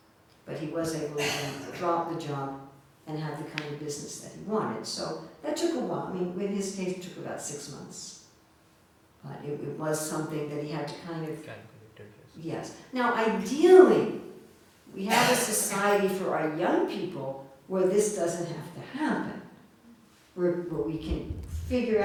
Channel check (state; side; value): identical; both; correlation 1.00